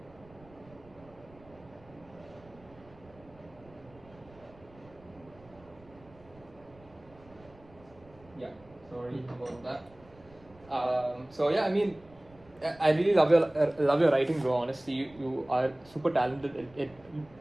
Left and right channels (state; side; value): noise; right; rumble, 25 dB below the sound